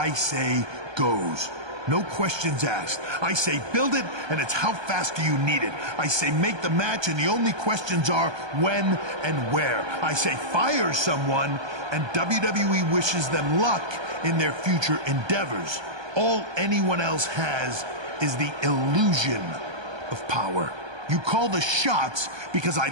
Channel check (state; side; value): late; left; 1.2 ms